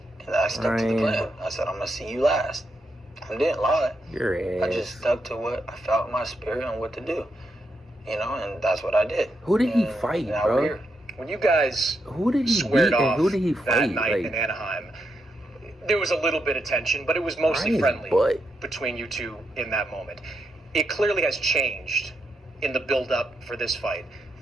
And I stuck to the Ryan. plan. I said, I'm going to see you last. I didn't lie. Your ass. I just stuck to what I felt in my spirit and what to do. You know, and that's what I did. Who did he And fight, now bro? we're here. When you guys Who did he squared beat and off who did he that fight? night Like, in Anaheim, there was a little bit of tension, but it was mostly Ryan's friendly butt. between you two in that moment. It clearly has changed in the build-up for this fight.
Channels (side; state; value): both; normal; correlation 0.82